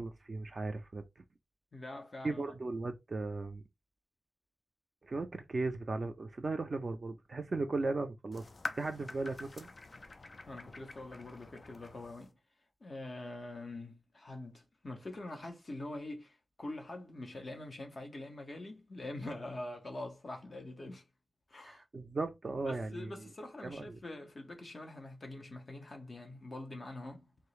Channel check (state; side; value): normal; both; correlation 0.93